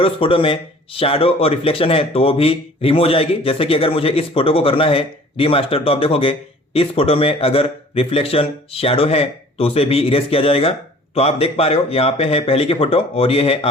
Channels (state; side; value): normal; both; correlation 0.49